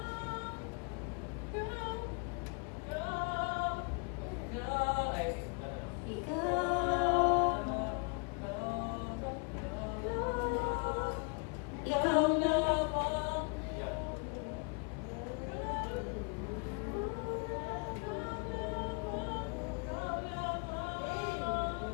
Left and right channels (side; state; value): right; quieter; 34.2 dB